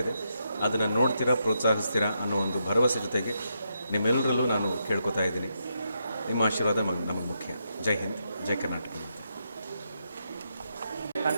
ಇದೆ. ಅದನ್ನು ನೋಡ್ತೀರಾ, ಪ್ರೋತ್ಸಾಹಿಸ್ತೀರಾ ಅನ್ನೋ ಒಂದು ಭರವಸೆ ಜೊತೆಗೆ ನಿಮ್ಮೆಲ್ಲರಲ್ಲೂ ನಾನು ಕೇಳ್ಕೊತಾ ಇದ್ದೀನಿ. ನಿಮ್ಮ ಆಶೀರ್ವಾದ ನಮಗೆ ಮುಖ್ಯ. ಜೈ ಹಿಂದ್, ಜೈ ಕರ್ನಾಟಕ.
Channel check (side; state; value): both; inverted; correlation -0.81